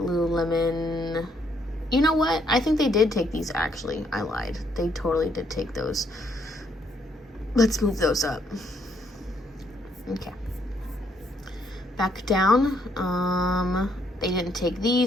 You know what? I think they did take these, actually. I lied. They totally did take those. Let's move those up. Okay. Back down. They didn't take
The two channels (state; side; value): normal; both; correlation 0.71